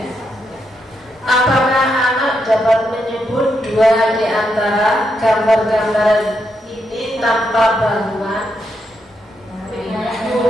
Apakah anak dapat menyebut dua di antara gambar-gambar ini tanpa bantuan?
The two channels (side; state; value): both; normal; correlation 0.81